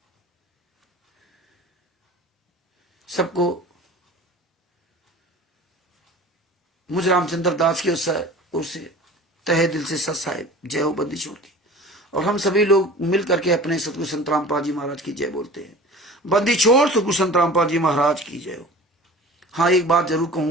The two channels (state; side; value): normal; both; correlation 0.41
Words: सबको मुझ रामचंद्र दास की ओर से तहे दिल से सत साहिब जय हो बंदी छोड़ की। और हम सभी लोग मिल करके अपने सतगुरु संत रामपाल जी महाराज की जय बोलते हैं। बंदी छोड़ सतगुरु संत रामपाल जी महाराज की जय हो। हाँ, एक बात जरूर